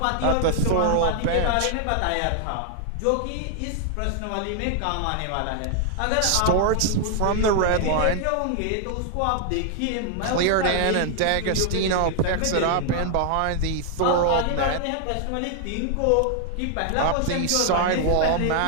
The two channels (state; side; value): different; both; correlation 0.00